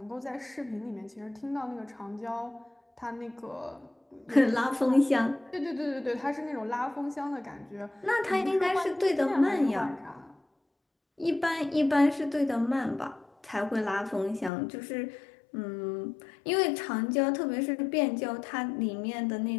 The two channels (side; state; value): right; drops out; at 14.5 s